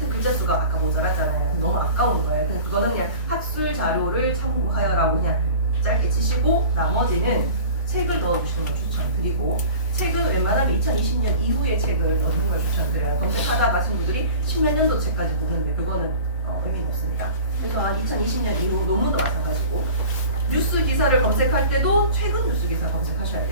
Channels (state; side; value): inverted; both; correlation -0.40